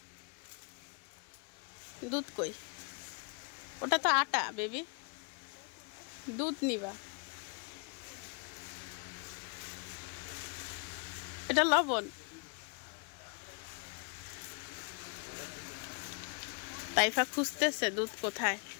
দুধ কই ওটা তো আটা বেবি দুধ নিবা এটা লবণ তাইফা খুঁজতেছে দুধ কোথায়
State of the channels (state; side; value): quieter; right; 39.2 dB